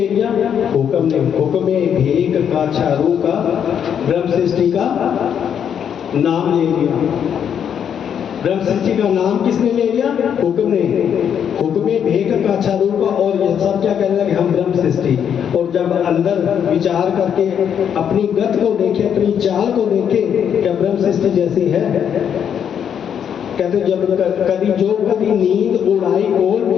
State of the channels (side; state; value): right; quieter; 8.4 dB